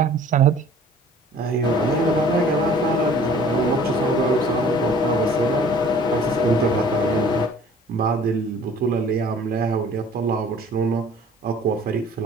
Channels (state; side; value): normal; both; correlation 0.51